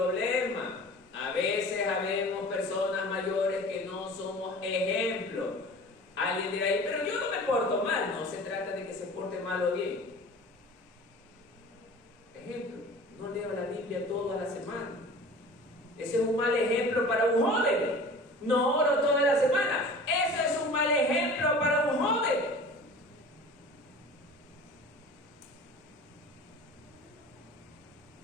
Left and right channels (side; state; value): both; normal; correlation 0.41